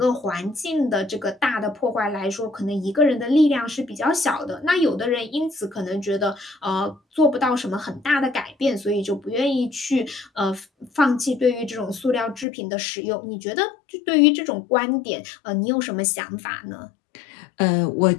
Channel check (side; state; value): right; drops out; at 12.5 s